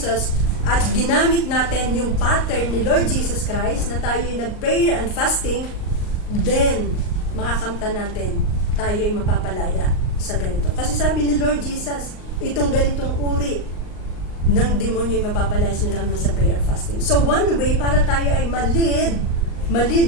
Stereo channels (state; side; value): late; right; 38 ms